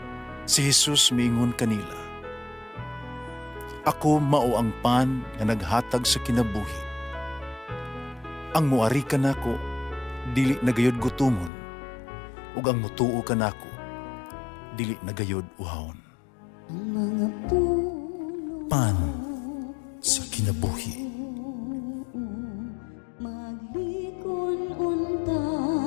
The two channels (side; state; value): right; drops out; at 11.5 s